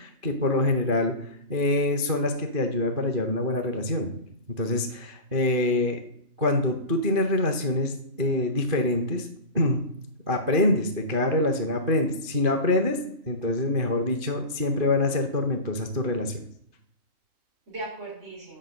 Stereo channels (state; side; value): late; left; 2.5 ms